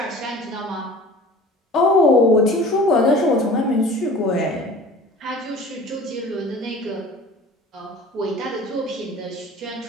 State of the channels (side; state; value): both; normal; correlation 0.42